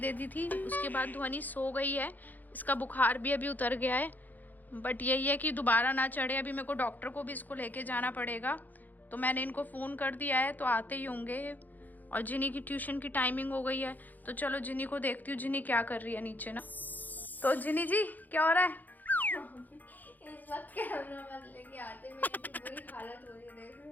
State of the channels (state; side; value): late; right; 0.084 ms